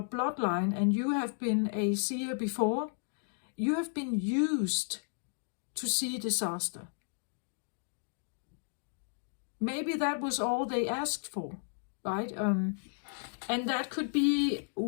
bloodline and you have been a seer before, you have been used to see disaster. Maybe that was all they asked for, right? And that could be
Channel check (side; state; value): right; silent; digital silence